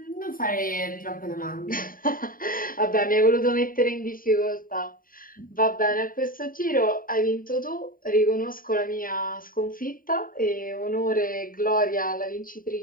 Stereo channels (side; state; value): right; late; 0.41 ms